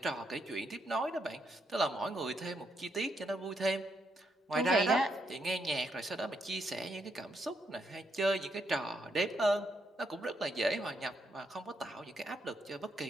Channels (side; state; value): both; normal; correlation 0.77